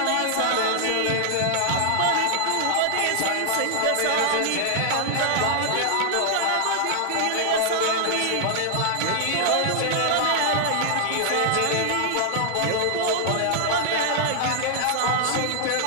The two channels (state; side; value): different; both; correlation 0.00